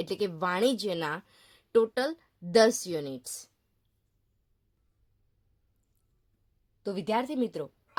એટલે કે વાણિજ્યના ટોટલ 10 યુનિટ્સ. તો વિદ્યાર્થી મિત્રો,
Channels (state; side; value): identical; both; correlation 1.00